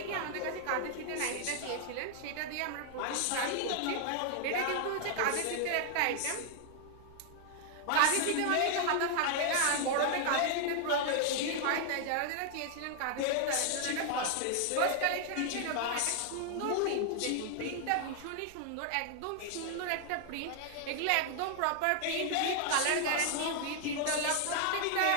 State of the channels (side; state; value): both; different; correlation 0.00